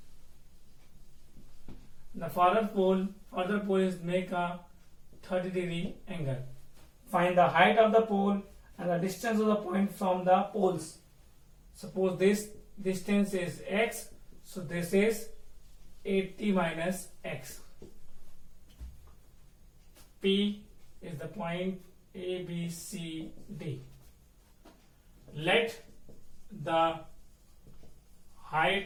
The further pole is make a 30 degree angle. Find the height of the pole and the distance of the point from the poles. Suppose this distance is X, so this is 80 minus X. P is the point A, B, C, D. Let the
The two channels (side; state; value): both; identical; correlation 1.00